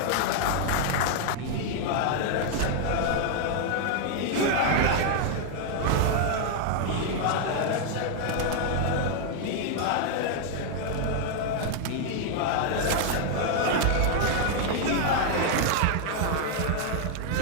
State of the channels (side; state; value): both; different; correlation 0.00